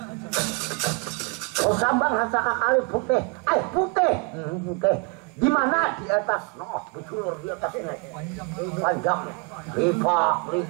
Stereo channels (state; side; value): quieter; left; 32.3 dB